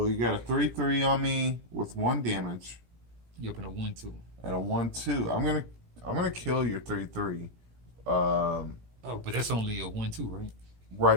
you got a 3/3 on me with 1 damage Yep, and a 1/2. and a 1/2. I'm gonna kill your 3/3. Oh, but that's only a 1/2, right?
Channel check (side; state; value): left; late; 17 ms